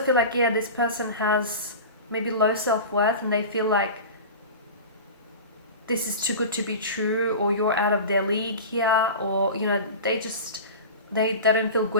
like, this person has maybe low self-worth, and they feel like this is too good to be true, or you're out of their league here, or, they don't feel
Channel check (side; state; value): both; inverted; correlation -0.32